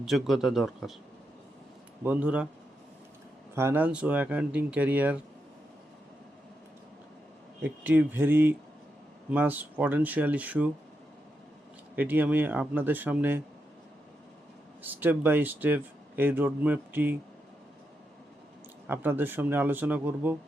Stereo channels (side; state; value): both; normal; correlation 0.84